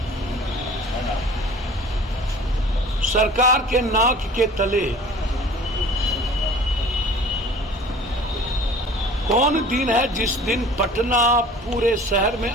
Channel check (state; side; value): normal; both; correlation 0.46